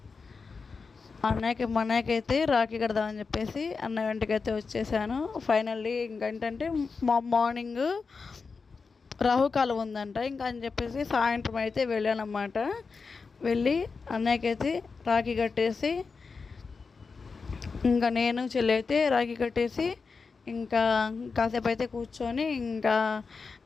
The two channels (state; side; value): quieter; right; 4.8 dB